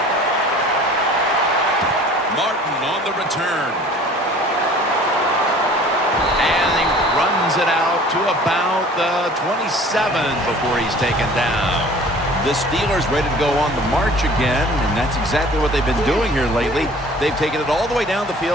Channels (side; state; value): both; normal; correlation 0.48